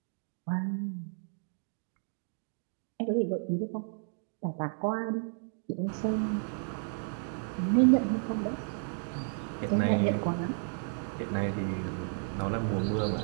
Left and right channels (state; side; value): silent; left; 56 dB below the other